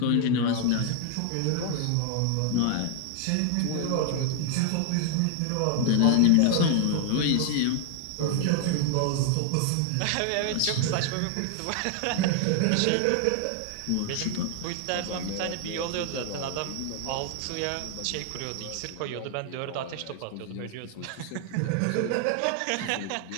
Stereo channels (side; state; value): both; different; correlation 0.00